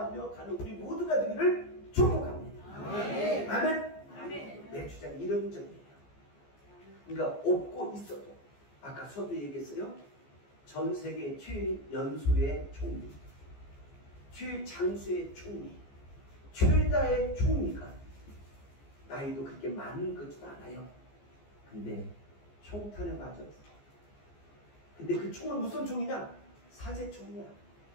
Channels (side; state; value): right; late; 14 ms